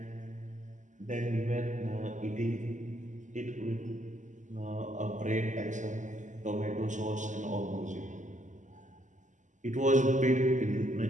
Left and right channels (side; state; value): left; late; 0.36 ms